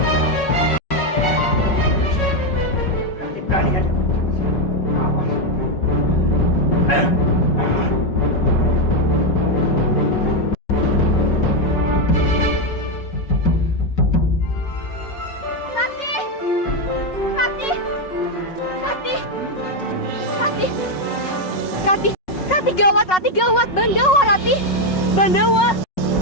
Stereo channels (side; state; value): right; late; 5.4 ms